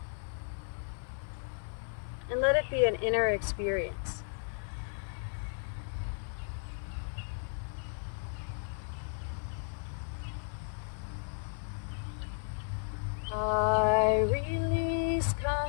and let it be an inner experience. I release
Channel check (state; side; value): silent; right; 55 dB below the other